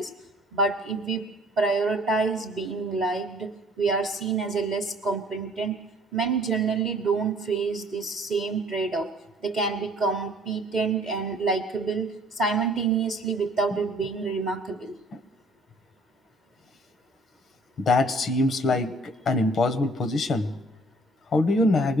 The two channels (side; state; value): both; normal; correlation 0.56